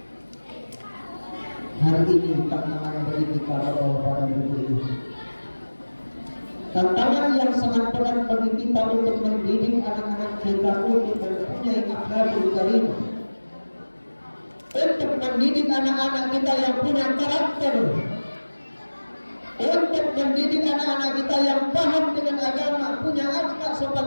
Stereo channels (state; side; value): inverted; both; correlation -1.00